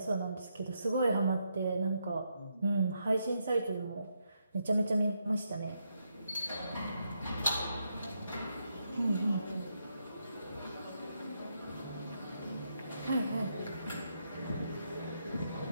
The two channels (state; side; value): inverted; both; correlation -0.80